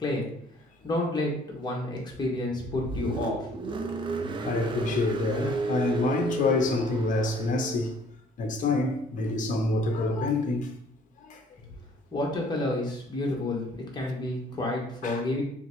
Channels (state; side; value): normal; both; correlation 0.58